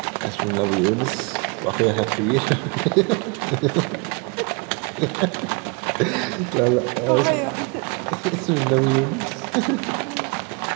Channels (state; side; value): quieter; left; 31.6 dB